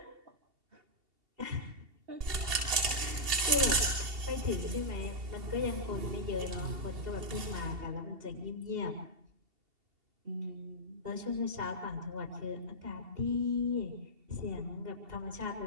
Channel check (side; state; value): left; late; 2.7 ms